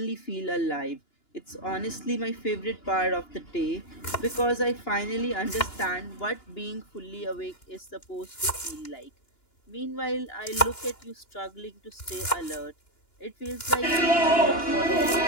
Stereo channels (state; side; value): late; right; 2.9 ms